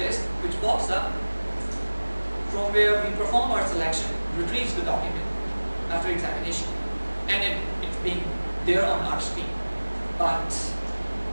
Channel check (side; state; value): both; inverted; correlation -1.00